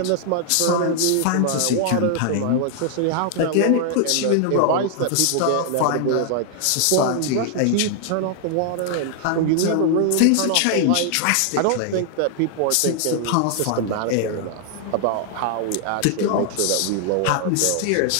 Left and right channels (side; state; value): both; different; correlation 0.00